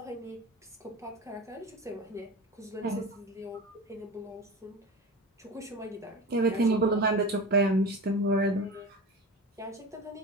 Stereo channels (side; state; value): both; normal; correlation 0.30